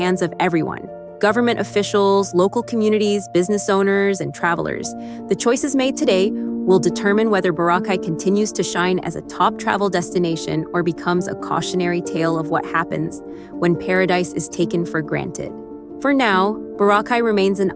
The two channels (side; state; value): both; identical; correlation 1.00